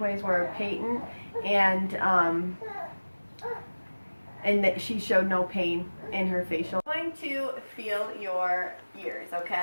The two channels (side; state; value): both; inverted; correlation -1.00